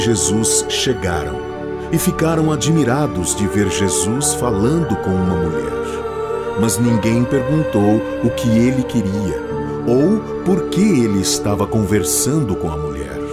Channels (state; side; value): identical; both; correlation 1.00